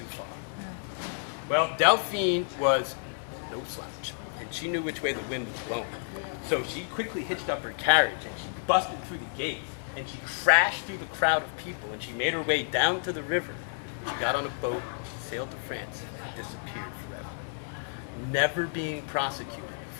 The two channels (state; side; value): silent; right; digital silence